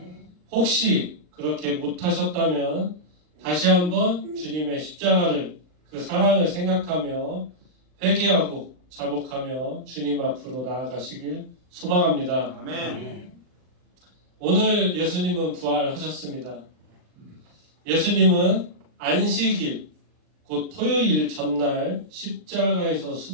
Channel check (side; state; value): left; late; 39 ms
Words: 혹시 그렇게 못하셨다면 다시 한번 주님의 십자가를 그 사랑을 생각하며 회개하고 자복하며 주님 앞으로 나아가시길 소망합니다. 아멘. 오늘 예수님은 부활하셨습니다. 예수님은 안식일, 곧 토요일 전날 십자가에서